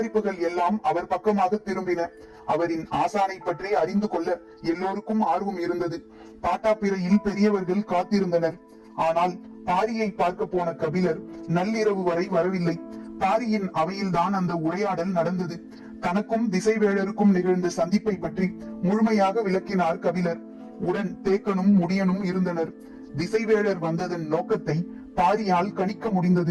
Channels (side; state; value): both; identical; correlation 1.00